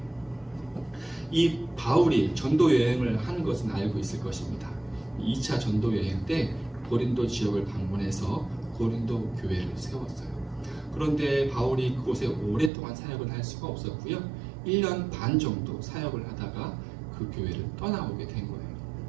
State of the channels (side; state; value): left; drops out; at 12.7 s